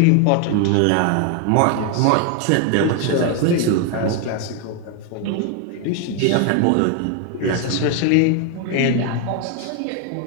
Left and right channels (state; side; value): different; both; correlation 0.01